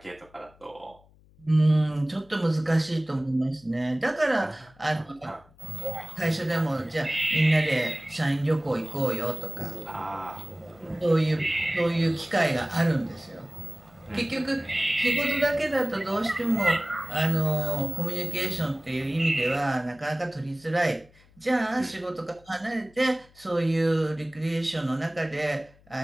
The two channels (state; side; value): noise; left; hum, 28 dB below the sound